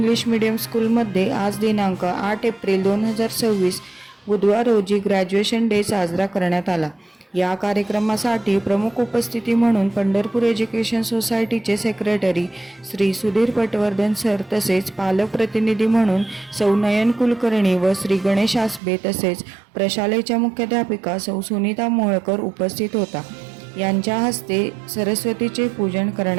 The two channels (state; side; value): drops out; left; at 18.8 s